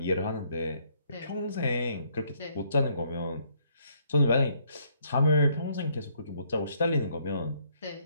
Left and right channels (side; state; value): both; inverted; correlation -0.68